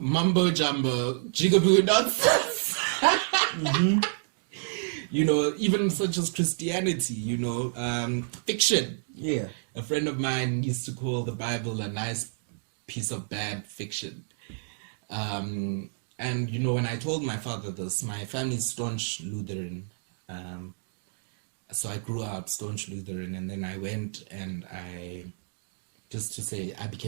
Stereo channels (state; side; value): silent; left; digital silence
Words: jigaboo nonsense. Even such as Christianity, fiction. Yeah. A friend of mine used to call the Bible a nice piece of bad fiction. And, when I told my father this, my family's staunch Lutheran. So I grew up staunch Lutheran, and then I went and I